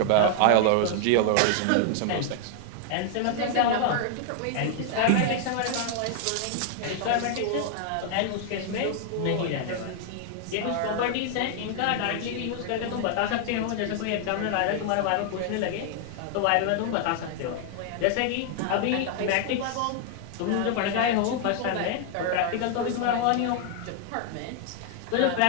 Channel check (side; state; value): both; different; correlation 0.00